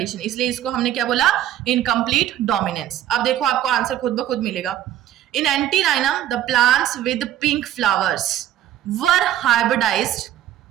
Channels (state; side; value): quieter; left; 12.0 dB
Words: इसलिए इसको हमने क्या बोला? Incomplete dominance. अब देखो आपको आंसर खुद ब खुद मिलेगा। In antirrhinum the plants with pink flowers were hybridized.